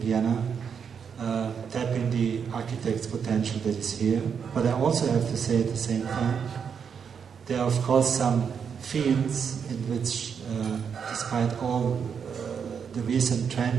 tapping the architect's potential that is here. But I also have to say at the same time, there are of course some fields in which, despite all the recent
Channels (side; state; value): left; quieter; 6.9 dB